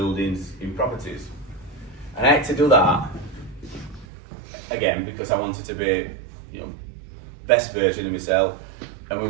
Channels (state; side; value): drops out; left; at 4.0 s